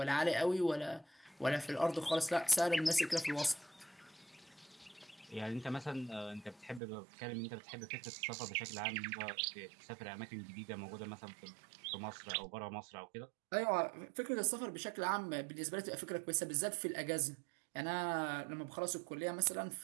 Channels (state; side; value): drops out; left; at 6.8 s